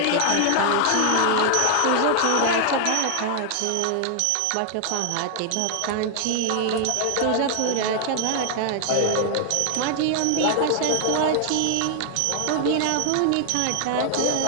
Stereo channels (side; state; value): both; different; correlation 0.00